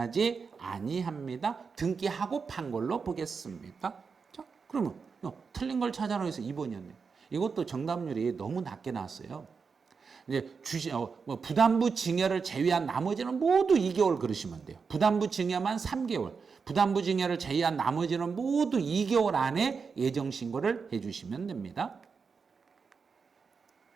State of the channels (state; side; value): quieter; left; 5.4 dB